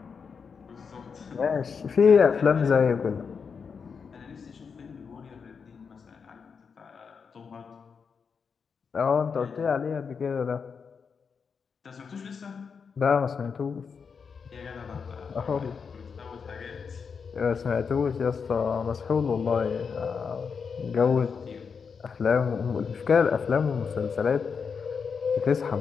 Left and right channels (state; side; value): quieter; right; 5.9 dB